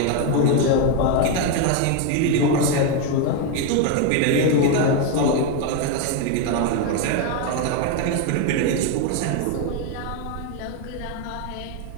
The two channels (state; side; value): different; both; correlation 0.02